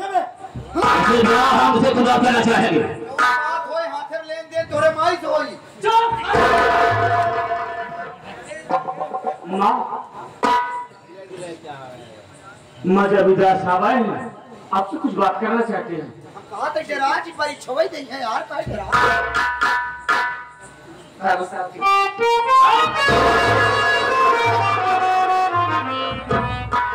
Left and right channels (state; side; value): identical; both; correlation 1.00